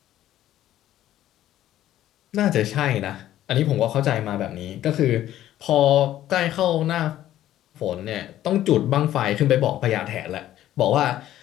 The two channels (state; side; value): quieter; right; 12.9 dB